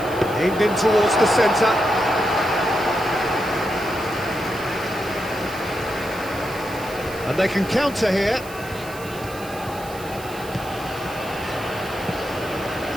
Aimed in towards the centre. And they can counter here.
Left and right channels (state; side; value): noise; right; hiss, 17 dB below the sound